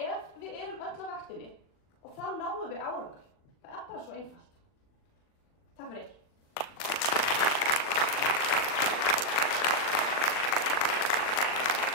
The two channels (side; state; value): right; late; 40 ms